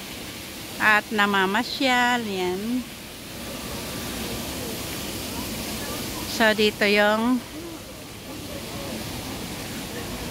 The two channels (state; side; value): identical; both; correlation 1.00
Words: at namamasyal. Yan. So, dito yung